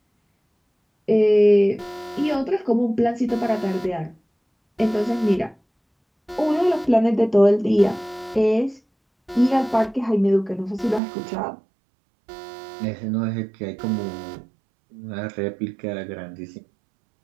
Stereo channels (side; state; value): left; drops out; at 11.0 s